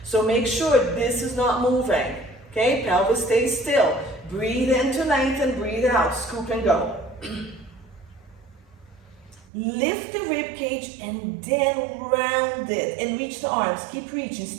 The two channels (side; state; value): left; drops out; at 9.5 s